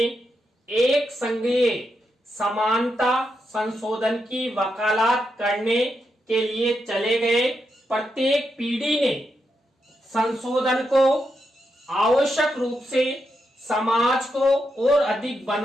एक संघीय समानता संशोधन की वकालत करने के लिए चले गए। प्रत्येक पीढ़ी ने संशोधन को आवश्यक रूप से समाज को और अधिक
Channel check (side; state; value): both; normal; correlation 0.84